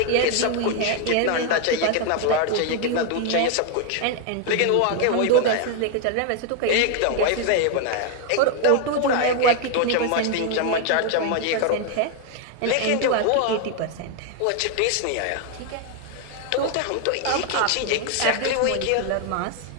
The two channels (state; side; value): different; both; correlation 0.01